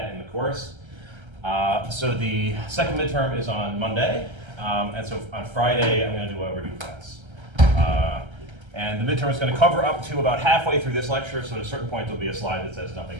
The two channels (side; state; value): left; late; 1.3 ms